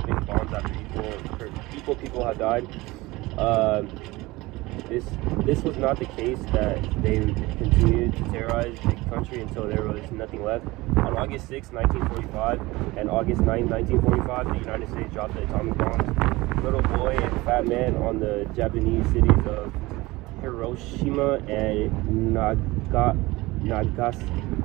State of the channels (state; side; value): quieter; left; 20.8 dB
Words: bombs after equal people had died. This was not the case, that they continued to terrorize the country until there was nothing left. On August 6, 1945 and August 9, 1945, the United States dropped the atomic bombs. Little boy and fat man on the Japanese cities of Hiroshima and Nagasaki,